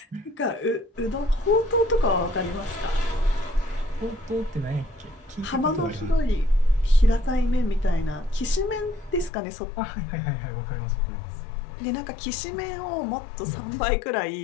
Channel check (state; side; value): drops out; right; at 9.3 s